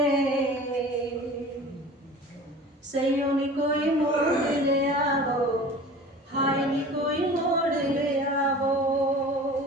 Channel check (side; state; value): both; normal; correlation 0.40